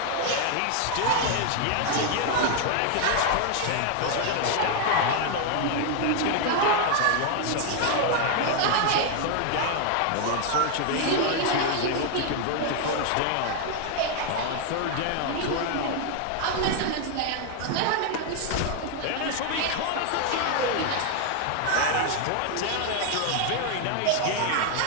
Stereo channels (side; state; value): both; different; correlation 0.00